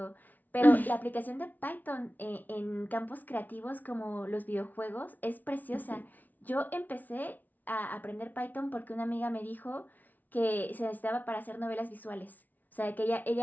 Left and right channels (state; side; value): late; right; 0.080 ms